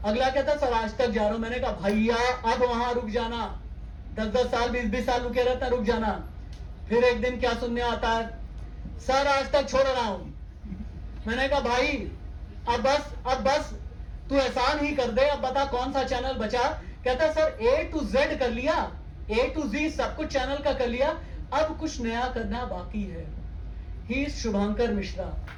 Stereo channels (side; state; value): both; identical; correlation 1.00